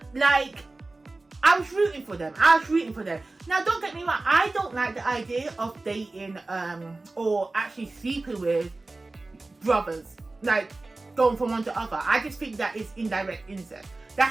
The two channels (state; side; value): quieter; left; 3.2 dB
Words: Like, I was rooting for them. Now, don't get me wrong. I don't like the idea of dating or actually sleeping with brothers, like going from one to other. I just think that is indirect incest.